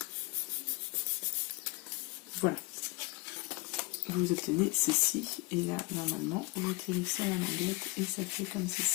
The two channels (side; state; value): right; quieter; 24.7 dB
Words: Voilà. Vous obtenez ceci. Et là, normalement, vous tirez ça à la languette et ça fait comme